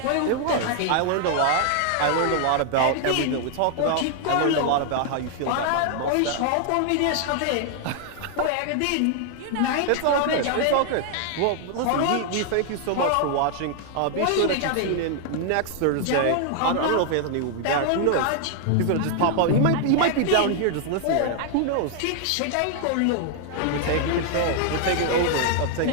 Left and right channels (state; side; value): different; both; correlation 0.00